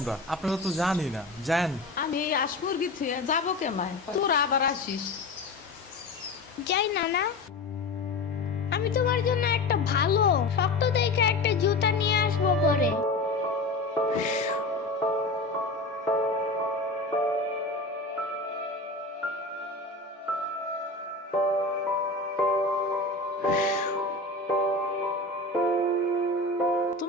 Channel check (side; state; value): right; quieter; 3.1 dB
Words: আপনারা তো জানি না, যান। আমি এই আসমুরগি থুয়ে যাবো কেমায়, তোরা আবার আসিস। যাই নানা, আমি তোমার জন্য একটা ভালো শক্ত দেখে একটা জুতা নিয়ে আসবো পরে।